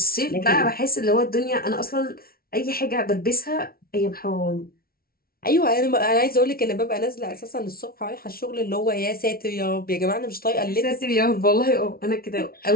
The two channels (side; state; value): right; late; 0.44 ms